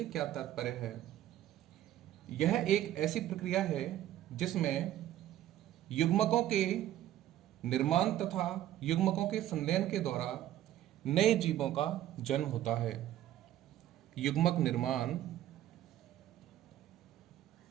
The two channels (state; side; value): quieter; left; 12.9 dB